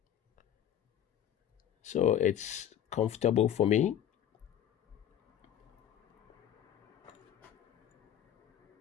so it's comfortable for me.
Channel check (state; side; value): quieter; right; 10.4 dB